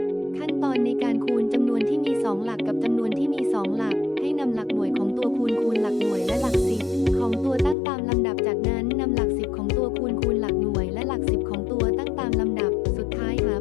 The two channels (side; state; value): right; drops out; at 7.8 s